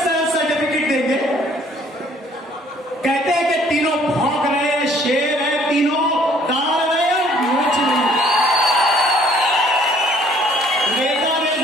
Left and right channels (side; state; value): both; normal; correlation 0.59